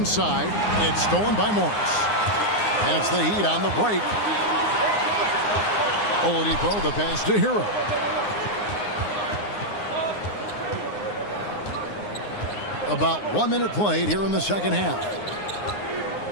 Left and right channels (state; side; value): late; right; 9.7 ms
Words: it's stolen by Morris. And it's the Heat on the break. Oladipo, the pass to Hero. About 1 minute played here in the second half.